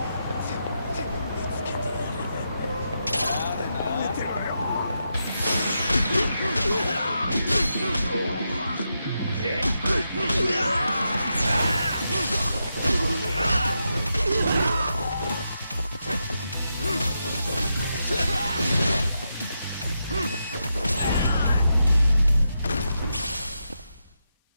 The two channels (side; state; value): both; inverted; correlation -0.85